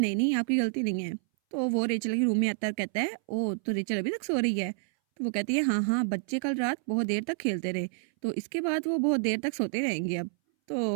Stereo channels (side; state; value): left; silent; 59 dB below the other